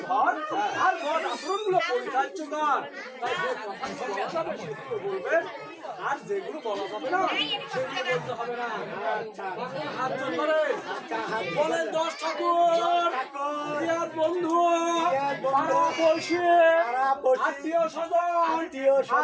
ঘর আর মত আচরণগুলো পরিচার্য কর তাই যে কথাগুলো বলা যাবে সেগুলো বলবেন আর যেগুলো বলা যাবে না সেগুলো বলতে হবে না। আচ্ছা হাত জোর করে বলেন 10 ঠাকুর প্রিয়ার বন্ধু পাড়া পড়শি আত্মীয় স্বজন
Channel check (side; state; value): both; identical; correlation 1.00